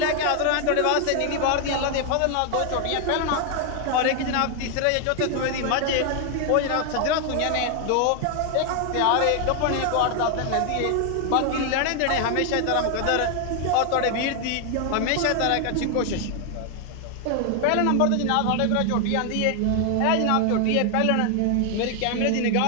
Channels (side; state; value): both; different; correlation 0.00